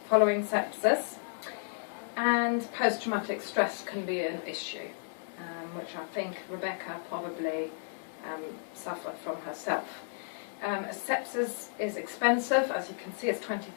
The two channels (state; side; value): silent; right; digital silence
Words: following sepsis, and post-traumatic stress can be an issue, which I think Rebecca probably suffered from herself. Sepsis is expensive. As you can see, it's